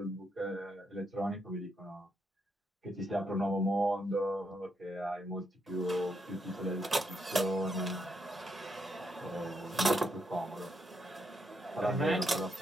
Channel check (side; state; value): both; normal; correlation 0.79